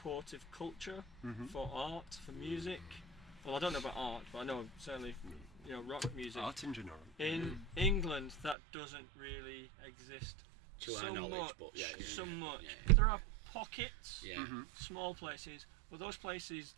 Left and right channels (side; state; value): left; drops out; at 8.6 s